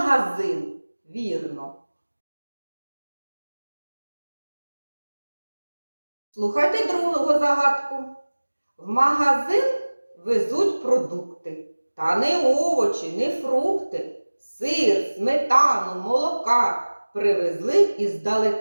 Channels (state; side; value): inverted; both; correlation -1.00